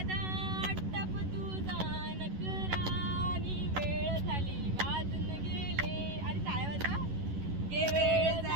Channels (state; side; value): late; left; 11 ms